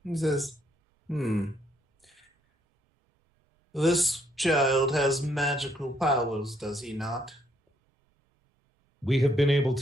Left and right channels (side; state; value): both; normal; correlation 0.71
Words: He says, This child has magical powers, does he not? We have been able